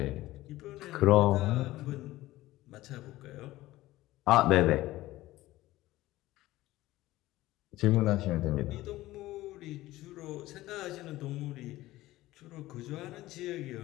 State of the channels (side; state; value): right; quieter; 16.9 dB